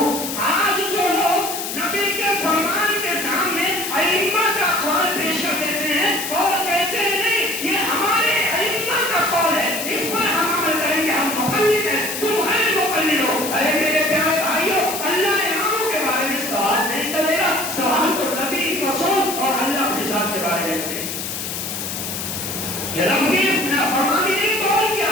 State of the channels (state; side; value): noise; left; hiss, 5 dB below the sound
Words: آج جو لوگ نبی کے فرمان کے سامنے ائمہ کا قول پیش کر دیتے ہیں اور کہتے ہیں نہیں یہ ہمارے ائمہ کا قول ہے، اس پر ہم عمل کریں گے، ہم مقلد ہیں، تم غیر مقلد ہو۔ ارے میرے پیارے بھائیوں اللہ اماموں کے بارے میں سوال نہیں کرے گا، سوال تو نبی رسول اور اللہ اپنے ذات کے بارے میں کرے گا۔ یہ رب کی نافرمانی نہیں تو اور